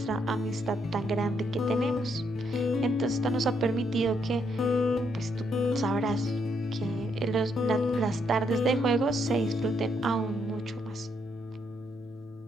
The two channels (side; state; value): both; normal; correlation 0.74